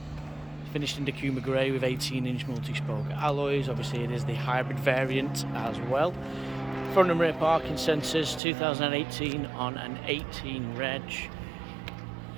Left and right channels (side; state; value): left; drops out; at 8.4 s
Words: Finished in Dakuma Grey with 18-inch multi-spoke alloys. Obviously it is the hybrid variant as well. Front and rear parking sensors, 2018 on an 18 reg.